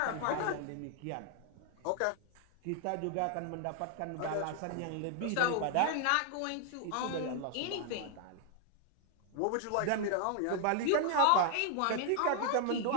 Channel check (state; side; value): different; both; correlation 0.00